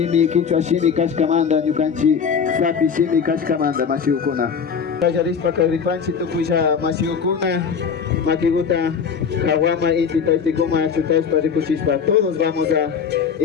Quichua shimi kashkamanda, ñukanchi sapi shimi kashkamanda, mashiukuna. Kayarispa kagripanchi tukuisha mashiukuna, makiguta kawama inti taitikuma chutashpa rikuchishpa. Todos vamos a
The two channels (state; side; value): quieter; right; 6.6 dB